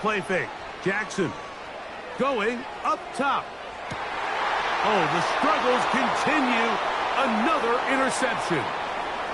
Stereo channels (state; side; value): identical; both; correlation 1.00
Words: fake. Jackson going up top. Oh, the struggles continue Another interception.